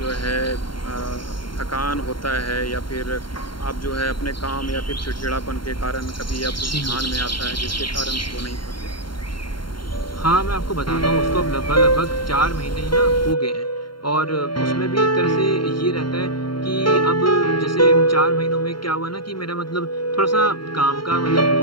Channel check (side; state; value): right; late; 0.73 ms